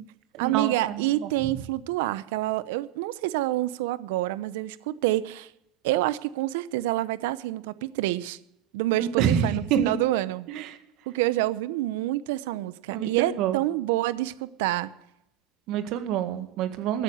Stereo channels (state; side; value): quieter; left; 12.8 dB